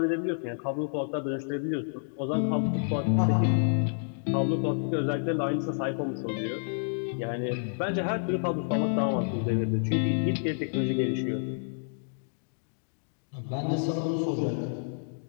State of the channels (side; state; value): right; silent; digital silence